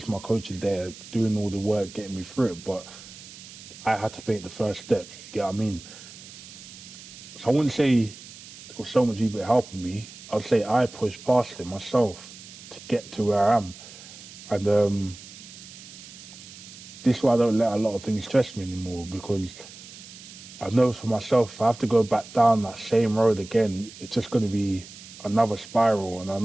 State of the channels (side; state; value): right; noise; hiss, 17 dB below the sound